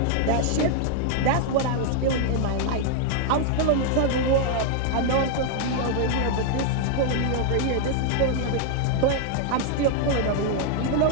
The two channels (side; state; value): both; different; correlation 0.00